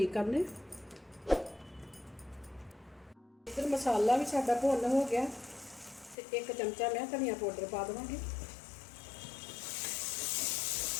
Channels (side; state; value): right; drops out; at 6.2 s